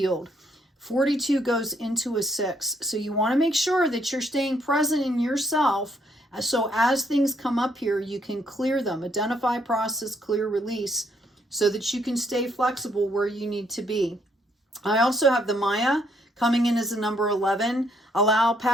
42 goes into a 6. So you want to make sure that you're staying present in yourself. So as things come up here, you can clear them, identify, process, clear, release, so that you can stay flexible where you need to be. I also have the Maya coming in as a number 11. Allow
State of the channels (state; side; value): normal; both; correlation 0.71